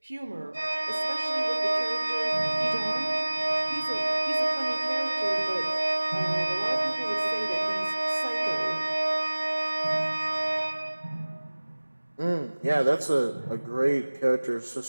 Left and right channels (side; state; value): both; inverted; correlation -1.00